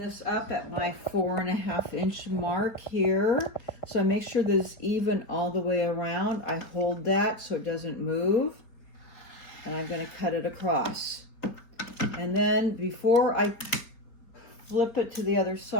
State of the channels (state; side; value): late; right; 4.5 ms